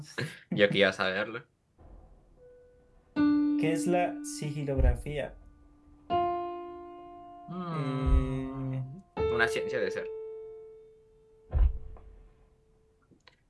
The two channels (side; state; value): both; identical; correlation 1.00